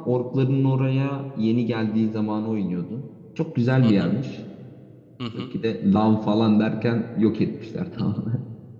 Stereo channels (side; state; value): both; identical; correlation 1.00